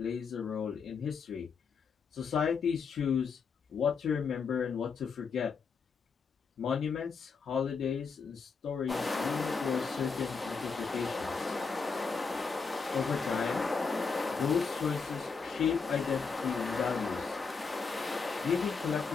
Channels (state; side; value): quieter; right; 5.2 dB